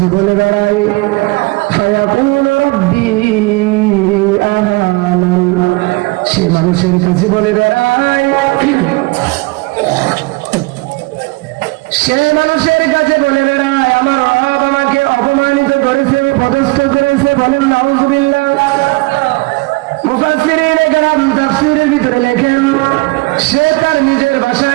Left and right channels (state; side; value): quieter; left; 24.8 dB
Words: বলে বেড়ায়, ফায়াকুলু রাব্বি আহানান। সে মানুষের কাছে বলে বেড়ায়, সে মানুষের কাছে বলে বেড়ায়, আমার রব আমাকে অপমানিত করেছে, পদস্থ করেছে। বলেন নাউযুবিল্লাহ। মুফাসসিরিনে কেরাম তাফসীরের ভিতরে লেখেন, সে তার নিজের